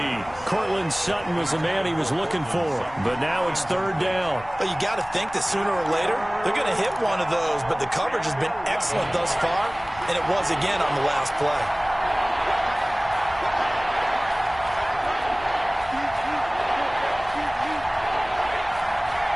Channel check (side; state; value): left; noise; rumble, 20 dB below the sound